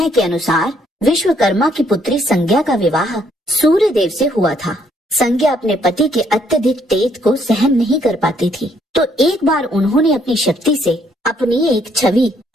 के अनुसार विश्वकर्मा की पुत्री संज्ञा का विवाह सूर्य देव से हुआ था। संज्ञा अपने पति के अत्यधिक तेज को सहन नहीं कर पाती थी, तो एक बार उन्होंने अपनी शक्ति से अपनी एक छवि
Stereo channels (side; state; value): both; normal; correlation 0.69